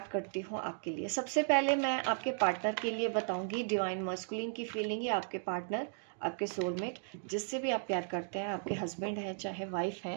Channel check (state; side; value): silent; left; digital silence